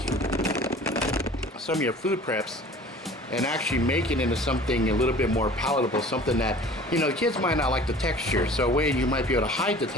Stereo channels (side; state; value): both; normal; correlation 0.45